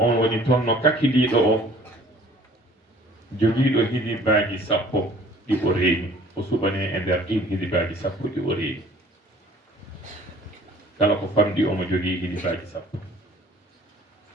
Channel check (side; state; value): both; normal; correlation 0.53